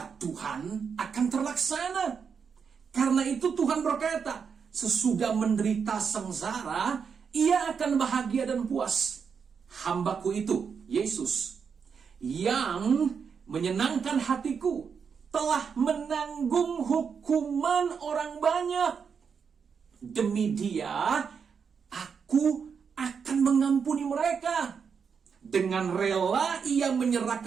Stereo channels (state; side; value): quieter; left; 6.3 dB